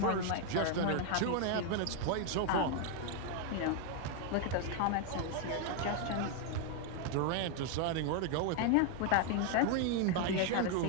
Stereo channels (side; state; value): both; different; correlation 0.01